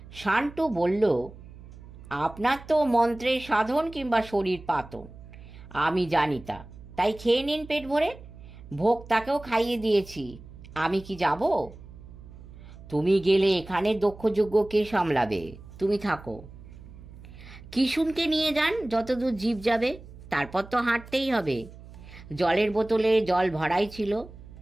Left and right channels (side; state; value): right; noise; hum, 17 dB below the sound